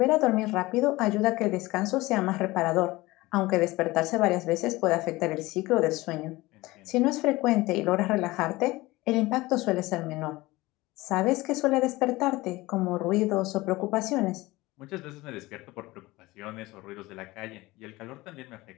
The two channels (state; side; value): quieter; right; 20.1 dB